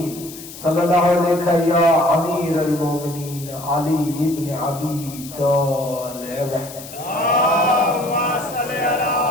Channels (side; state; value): left; noise; hiss, 15 dB below the sound